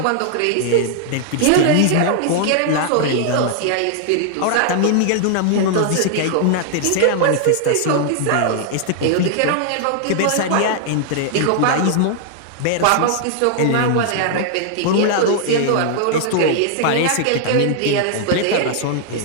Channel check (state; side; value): different; both; correlation 0.00